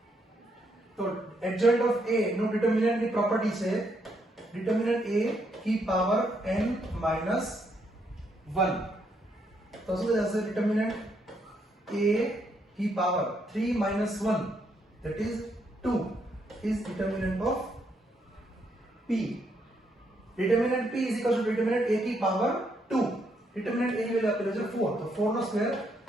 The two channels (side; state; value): both; normal; correlation 0.75